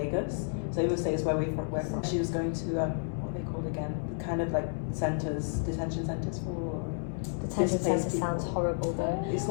So Imo State is where we're from. She was going to what are they called again? Kind of like centers, detention centers for Detention displaced centre sounds people. horrible though. It's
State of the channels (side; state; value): right; silent; digital silence